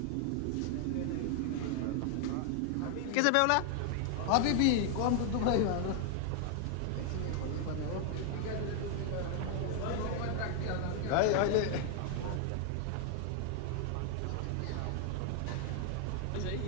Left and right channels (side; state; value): both; different; correlation 0.00